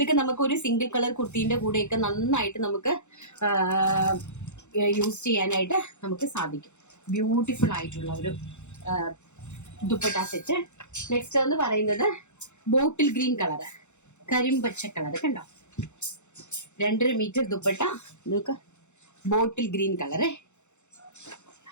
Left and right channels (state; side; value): late; right; 0.83 ms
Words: നമുക്ക് ഒരു സിംഗിൾ കളർ കുർത്തിന്റെ കൂടെയൊക്കെ നന്നായിട്ട് നമുക്ക് യൂസ് ചെയ്യാനായിട്ട് നമുക്ക് സാധിക്കും. ബ്യൂട്ടിഫുൾ ആയിട്ടുള്ള ഒരു ദുപ്പട്ട സെറ്റ്. നെക്സ്റ്റ് എന്ന് പറയുന്നത് ബോട്ടിൽ ഗ്രീൻ കളർ, കരിമ്പച്ച കളർ. കണ്ടോ, 2.5 മീറ്റർ ദുപ്പട്ട, നോക്ക, ബോട്ടിൽ ഗ്രീൻ കളറ്.